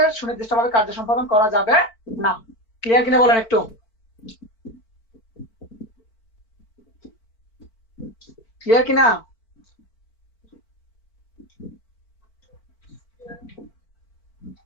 সুনির্দিষ্টভাবে কার্য সম্পাদন করা যাবে না। ক্লিয়ার কিনা বলেন একটু? ক্লিয়ার কিনা?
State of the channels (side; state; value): right; late; 4.5 ms